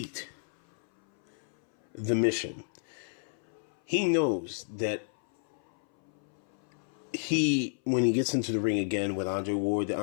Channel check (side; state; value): right; silent; 57 dB below the other